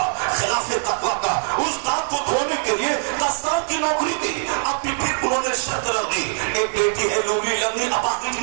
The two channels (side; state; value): left; silent; 60 dB below the other